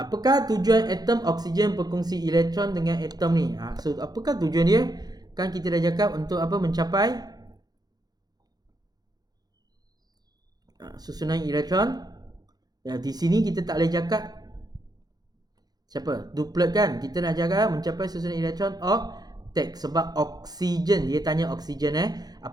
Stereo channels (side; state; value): left; late; 0.19 ms